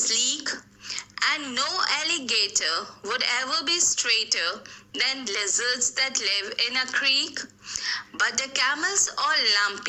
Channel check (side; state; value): both; identical; correlation 1.00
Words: and no alligator would ever be straighter than lizards that live in a creek. But the camels all